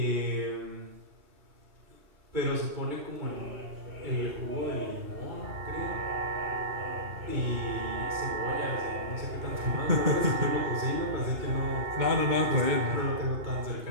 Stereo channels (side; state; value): left; late; 2.7 ms